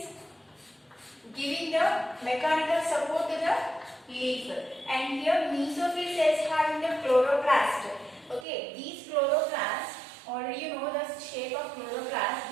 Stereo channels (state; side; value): drops out; left; at 8.5 s